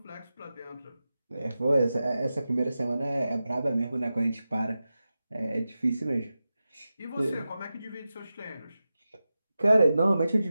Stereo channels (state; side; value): inverted; both; correlation -0.93